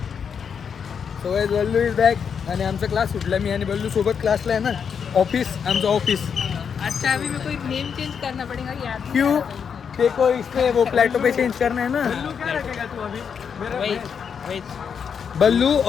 So guys Ballu is back. आणि आमचा क्लास सुटला. मी आणि बल्लू सोबत क्लासला आहे ना. ऑफिस आमचं ऑफिस. अच्छा अभी मेरे को नेम चेंज करना पड़ेगा याद नहीं क्यों? आ रहा है। देखो इसमें वो प्लेटो पे चेंज करना है ना. वही बल्लू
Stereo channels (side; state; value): right; quieter; 6.9 dB